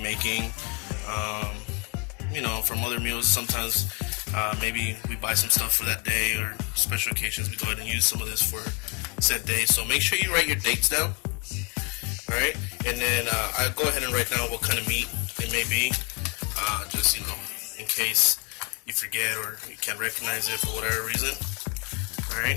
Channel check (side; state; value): right; quieter; 30.4 dB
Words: From other meals, sometimes maybe we buy some stuff for that day, or special occasions we go ahead and use some of this for set days. So make sure you write your dates down. Alright, and then I'll go ahead and write down what kind of meat it may be, just in case you forget or you can't recognize it for whatever reason.